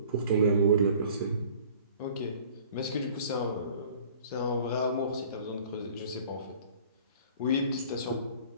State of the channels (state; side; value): inverted; both; correlation -0.49